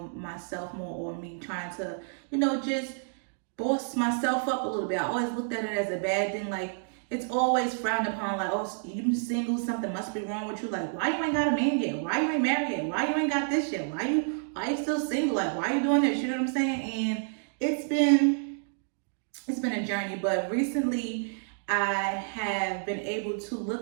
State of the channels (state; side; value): silent; left; digital silence